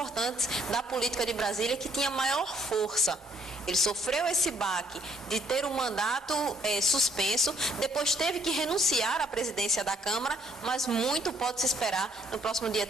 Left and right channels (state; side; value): normal; both; correlation 0.66